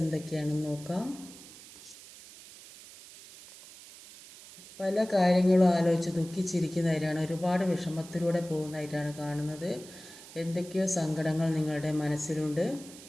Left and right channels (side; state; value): right; noise; hiss, 18 dB below the sound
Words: നോക്കാം. പല കാര്യങ്ങളും ആലോചിച്ച് ദുഃഖിച്ചിരിക്കുന്നതായിട്ടാണ്, ഒരുപാട് വിഷമത്തിലൂടെ പോകുന്നതായിട്ടാണ് കാണുന്നത്. എന്തൊക്കെയോ സങ്കടങ്ങൾ നിങ്ങളുടെ മനസ്സിലുണ്ട്.